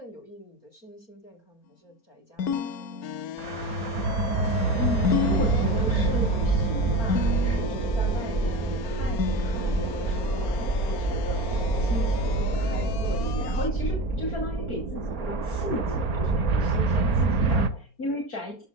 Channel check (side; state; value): right; late; 4.4 ms